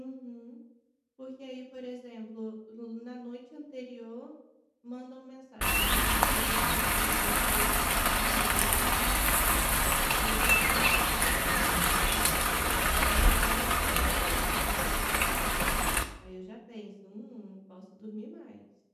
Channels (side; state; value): both; identical; correlation 1.00